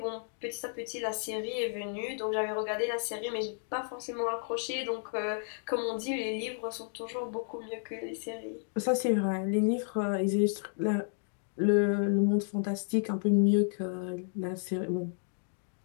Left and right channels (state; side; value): silent; right; digital silence